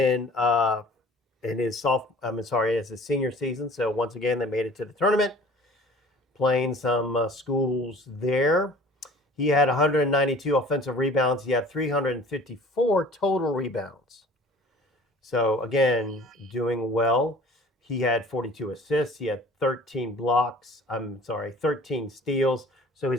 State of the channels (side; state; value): both; normal; correlation 0.48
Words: his as his senior season. So once again, they made it to the tournament, playing some schools there. He had 192 offensive rebounds. He had 354 total rebounds. So again, doing well. He had 42 assists. He had 13 steals. So